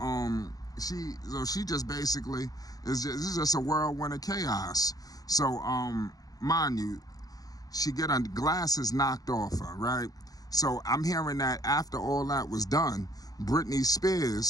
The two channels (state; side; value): late; right; 0.18 ms